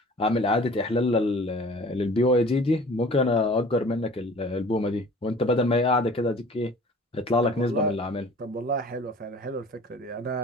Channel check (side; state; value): both; normal; correlation 0.46